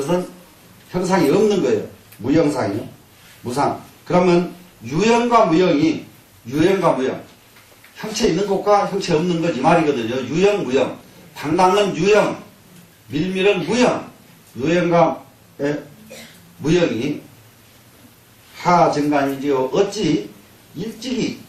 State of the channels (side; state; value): both; identical; correlation 1.00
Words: 형상이 없는 거예요. 무형상이요. 무상. 그러면 유형과 무형. 형체 있는 것과 형체 없는 것 이 말이거든요. 유형, 무형. 당당은 유형, 밀밀은 무형. 유형과 무형이 하증간이지요. 어찌 일찍이